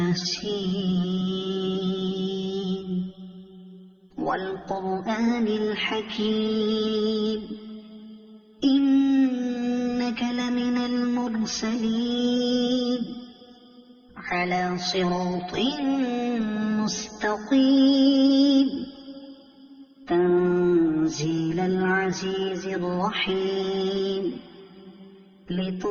والقرآن الحكيم إنك لمن المرسلين على صراط مستقيم تنزيل العزيز الرحيم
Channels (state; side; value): identical; both; correlation 1.00